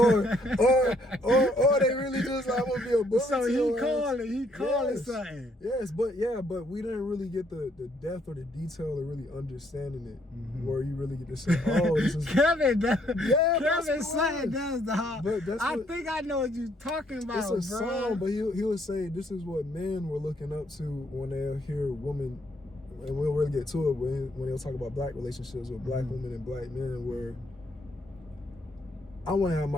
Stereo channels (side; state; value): both; normal; correlation 0.69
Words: they really just like, I'm gonna be a bully. So he called it something. Yes, but we didn't really get the depth or the detail of really understanding it, where you really get to say, oh, this is Kevin. Kevin saying that's the hard. But I think I know what you're talking about. It's a song, but he would say this is what men were looking up to when they hear women, and we'll really get to it when they'll talk about black relationships with black women and black men, where I want to have